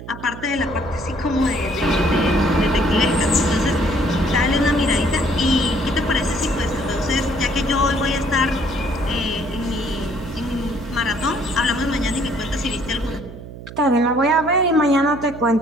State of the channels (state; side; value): noise; right; hum, 13 dB below the sound